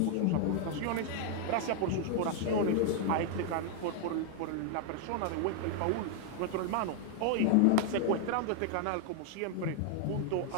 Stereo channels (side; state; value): both; different; correlation 0.00